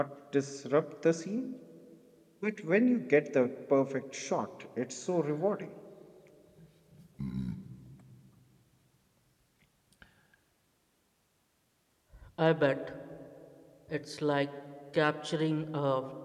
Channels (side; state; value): both; identical; correlation 1.00